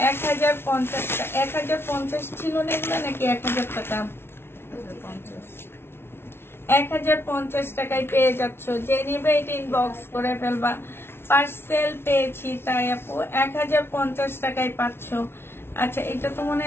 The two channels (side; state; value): right; late; 0.12 ms